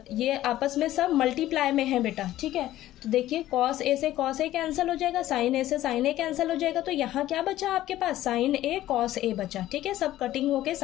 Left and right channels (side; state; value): right; quieter; 14.3 dB